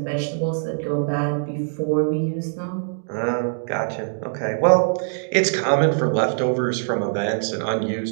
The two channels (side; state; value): left; silent; digital silence